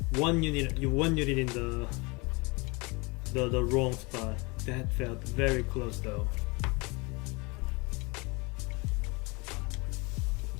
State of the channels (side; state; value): right; quieter; 27.6 dB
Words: One unit in the wrong spot. That felt very close though.